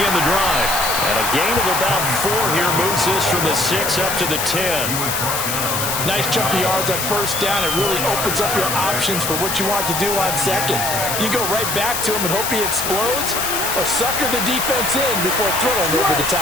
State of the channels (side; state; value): left; noise; hiss, 2 dB below the sound